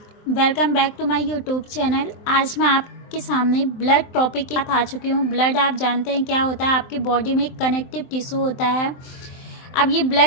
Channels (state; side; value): late; right; 23 ms